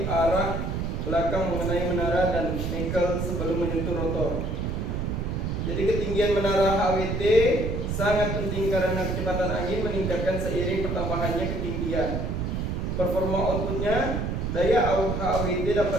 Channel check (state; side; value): noise; right; rumble, 1 dB below the sound